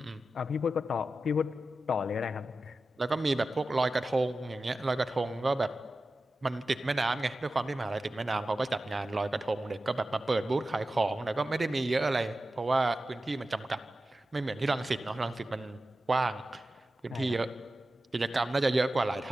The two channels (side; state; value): both; normal; correlation 0.93